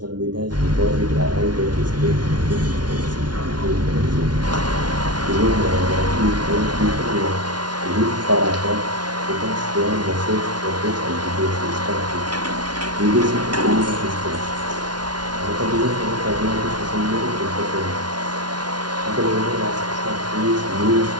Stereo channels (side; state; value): left; late; 0.70 ms